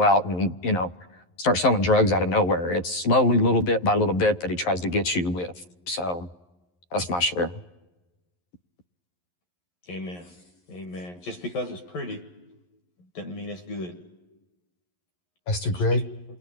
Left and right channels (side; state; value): right; late; 11 ms